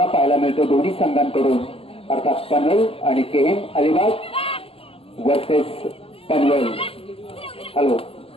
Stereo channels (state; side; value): late; right; 0.27 ms